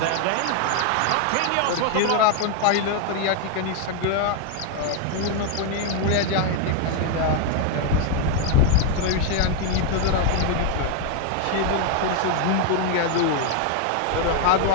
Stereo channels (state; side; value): different; both; correlation 0.01